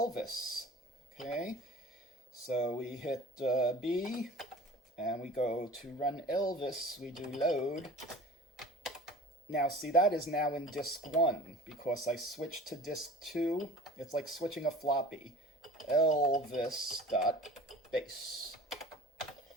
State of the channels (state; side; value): normal; both; correlation 0.43